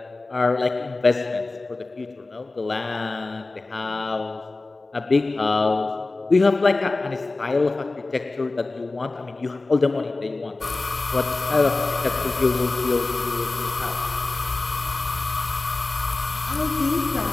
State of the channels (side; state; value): right; quieter; 3.3 dB